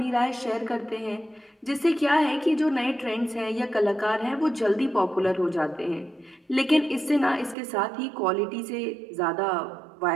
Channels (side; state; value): left; drops out; at 7.6 s